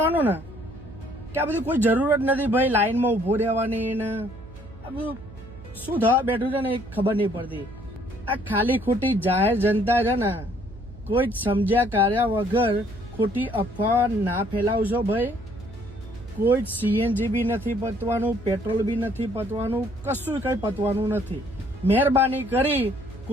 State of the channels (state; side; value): noise; right; hum, 18 dB below the sound